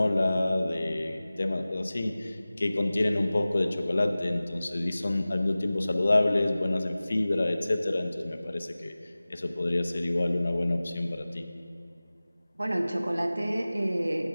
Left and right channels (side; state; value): both; inverted; correlation -0.98